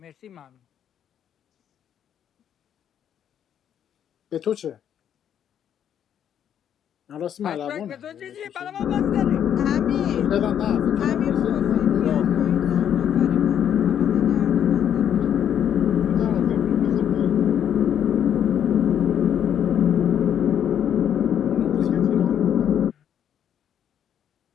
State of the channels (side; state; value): right; quieter; 9.4 dB